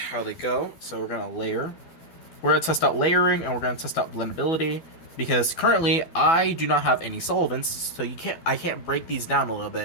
how they go. So we're gonna layer. We're gonna test out layering, and we're gonna test out blendability. Because currently I do not have any solvents, so I can't break these down a little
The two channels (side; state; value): right; late; 12 ms